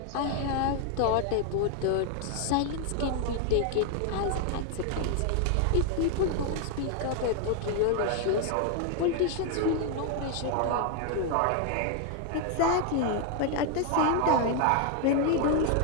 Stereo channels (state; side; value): different; both; correlation 0.00